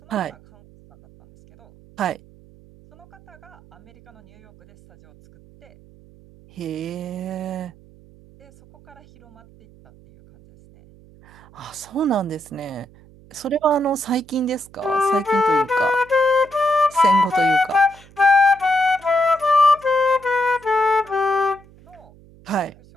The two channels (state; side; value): noise; right; hum, 25 dB below the sound